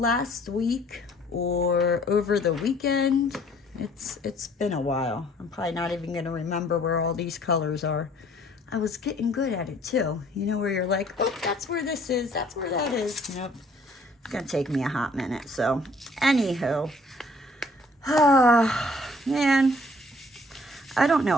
week or over the weekend. It's been a while. I'm probably not even going to remember where all these colors are. I was getting good at it too. You know, where you're like, oh, that's where this is. That's where that is. Nope. It's going to take me a hot minute. So, anywho. Man. I don't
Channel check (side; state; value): both; normal; correlation 0.58